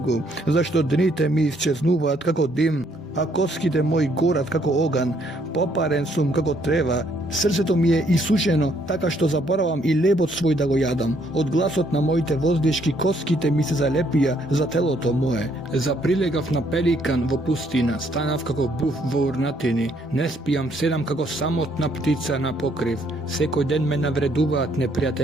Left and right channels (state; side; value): normal; both; correlation 0.68